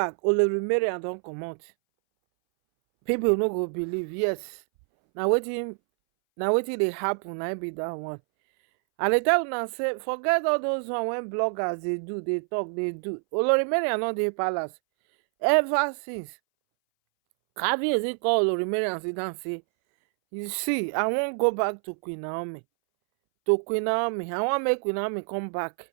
Olori Mariam don comot. People no go believe. Yes, na wetin dey happen, na im be that one. And dey tell una say forget all those one wey bloggers dey do, dey talk, dey do. Olori Mariam no dey palace ever since. Kabiyesi call Olori Mariam sit down say, you see, I wan go back to Queen Naomi. I wan make Queen Naomi come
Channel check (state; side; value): silent; left; 60 dB below the other